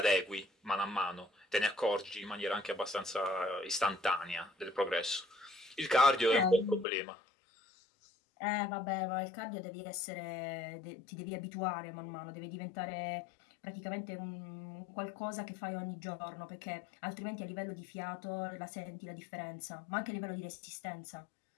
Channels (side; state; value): right; drops out; at 6.9 s